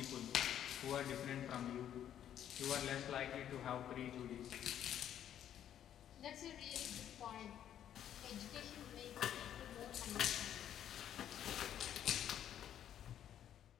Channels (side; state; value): right; quieter; 10.4 dB